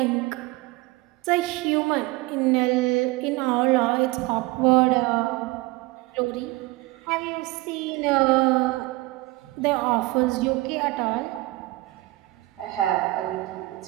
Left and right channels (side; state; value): left; quieter; 21.0 dB